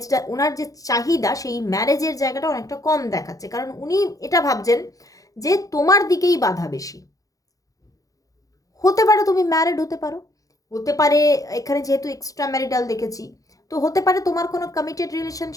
ওনার যে চাহিদা সেই ম্যারেজের জায়গাটা অনেকটা কম দেখাচ্ছে, কারণ উনি এটা ভাবছেন যে তোমার দিকেই বাধা বেশি। হতে পারে তুমি ম্যারিড হতে পারো, হতে পারে এখানে যেহেতু এক্সট্রা ম্যারিটাল দেখেছি, তো হতে পারে তোমার কোনো কমিটেড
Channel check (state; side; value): late; right; 0.17 ms